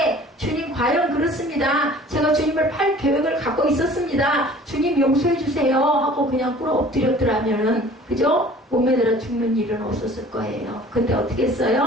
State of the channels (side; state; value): both; normal; correlation 0.48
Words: 주님 과연 그렇습니다. 제가 주님을 팔 계획을 갖고 있었습니다. 주님 용서해 주세요 하고 그냥 꿇어 엎드렸더라면은 그죠? 몸에 들어 죽는 일은 없었을 거예요. 근데 어떻게